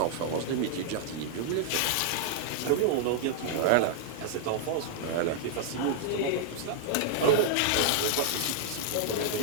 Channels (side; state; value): both; different; correlation -0.01